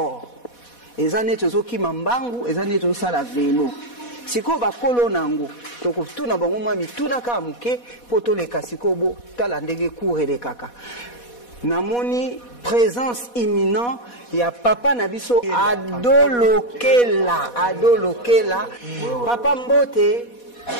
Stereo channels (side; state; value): right; late; 4.1 ms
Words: ezane tozo kima mbangu ezane tozo sala vélo siko ba kolo nango toko tuna bango mwa mituna ka muke poto le kasiko bo tala ndenge courre kaka namoni présence imminente ya papa na biso adolokela papa mbote